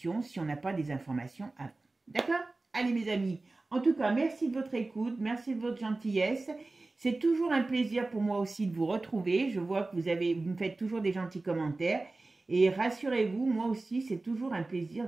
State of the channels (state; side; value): quieter; left; 3.2 dB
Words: si on n'a pas des informations avant. D'accord? Allez mes amis, en tout cas, merci de votre écoute, merci de votre gentillesse. C'est toujours un plaisir pour moi aussi de vous retrouver. Je vois que vous me faites toujours des gentils commentaires. Et rassurez-vous, moi aussi, c'est toujours un plaisir